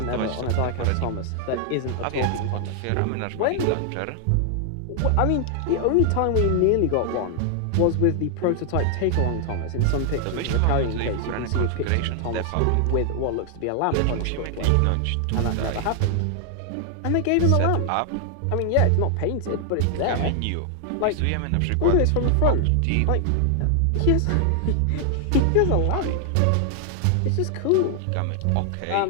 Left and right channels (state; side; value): different; both; correlation 0.00